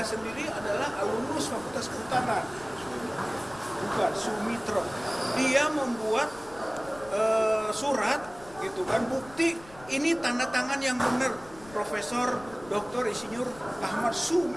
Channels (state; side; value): noise; left; rumble, 20 dB below the sound